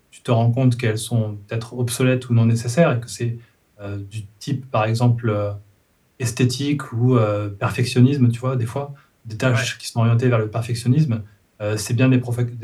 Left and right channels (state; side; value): identical; both; correlation 1.00